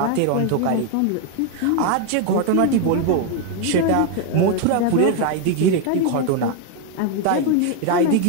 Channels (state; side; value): different; both; correlation 0.01